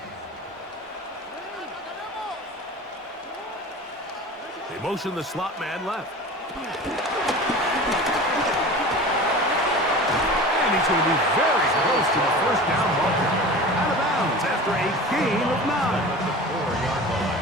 They motion the slot man left. And he's going to be very close to the first down marker. Out of bounds after a gain of 9. At the 4-yard line.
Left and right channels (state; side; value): normal; both; correlation 0.36